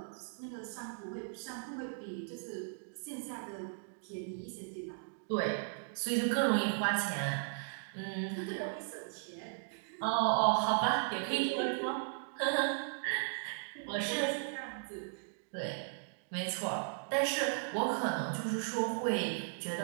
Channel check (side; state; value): left; silent; digital silence